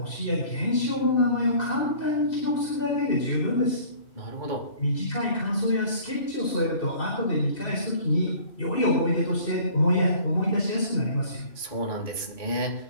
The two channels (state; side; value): late; right; 2.6 ms